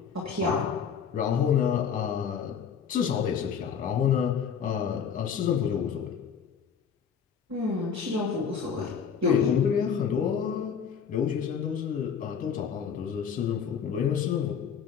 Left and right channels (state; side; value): quieter; right; 7.0 dB